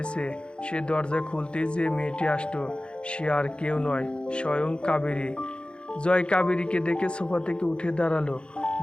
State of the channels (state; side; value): late; right; 0.055 ms